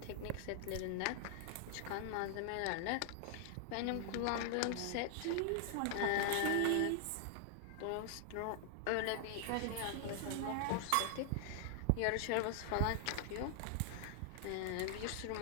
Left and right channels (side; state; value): both; different; correlation 0.00